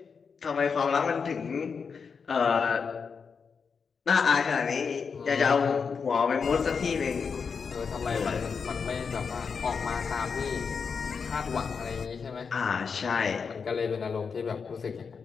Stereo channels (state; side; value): quieter; right; 5.7 dB